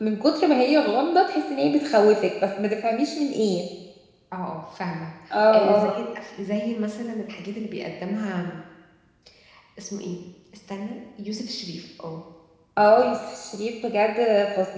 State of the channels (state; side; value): identical; both; correlation 1.00